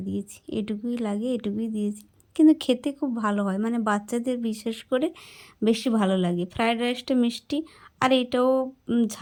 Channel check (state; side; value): identical; both; correlation 1.00